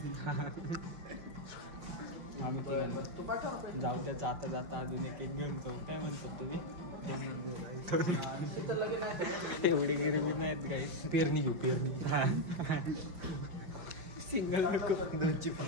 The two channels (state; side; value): late; left; 5.7 ms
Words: आम्ही तिघांनी जाऊ द्या जाता जाता अजून एक घेऊन जाऊ काय म्हणतात तुम्ही एवढी गरिबी नाहीत काही पेरणी घेऊ पेरणी सिंगल नको दोनची